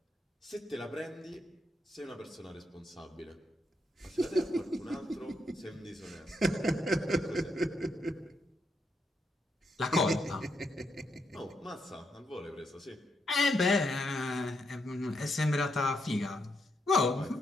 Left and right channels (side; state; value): both; normal; correlation 0.80